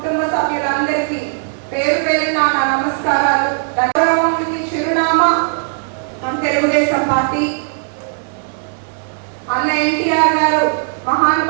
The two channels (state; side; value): silent; left; digital silence